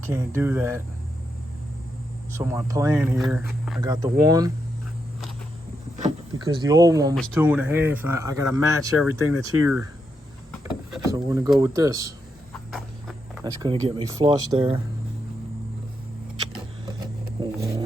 do that. So my plan here, I got the one, because the old one was 2.5, and I gotta match everything that's here. So we're gonna go with this. That's gonna get me flush there.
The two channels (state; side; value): normal; both; correlation 0.83